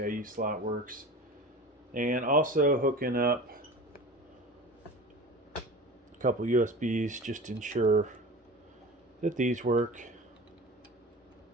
slot works. And also hooking up a couple USBs just to ensure that these work.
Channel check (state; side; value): normal; both; correlation 0.35